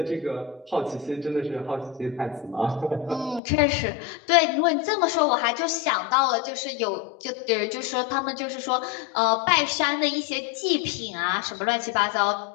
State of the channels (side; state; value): right; drops out; at 3.4 s